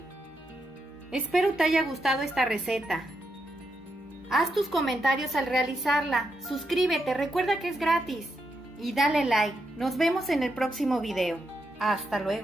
Espero te haya gustado esta receta. Haz tus comentarios al realizarla, suscríbete, recuerda que es gratis y dale like. Nos vemos en el próximo video. Hasta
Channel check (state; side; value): normal; both; correlation 0.83